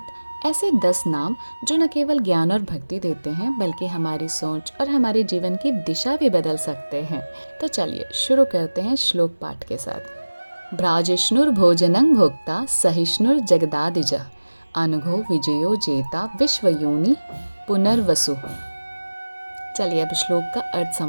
ऐसे 10 नाम जो न केवल ज्ञान और भक्ति देते हैं, बल्कि हमारी सोच और हमारे जीवन की दिशा भी बदल सकते हैं। तो चलिए शुरू करते हैं श्लोक पाठ के साथ। भ्राजिष्णुर्भोजनं भोक्ता सहिष्णुर जगदादिजः अनघो विजयो जेता विश्वयोनि पुनर्वसु। चलिए अब श्लोक का अर्थ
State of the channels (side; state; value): both; inverted; correlation -1.00